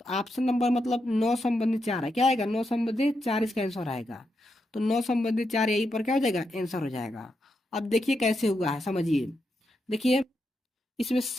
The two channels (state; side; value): normal; both; correlation 0.84